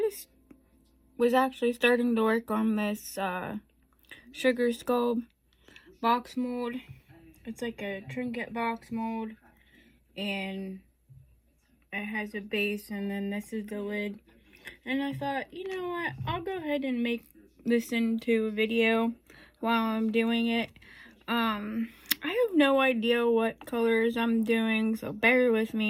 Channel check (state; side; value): identical; both; correlation 1.00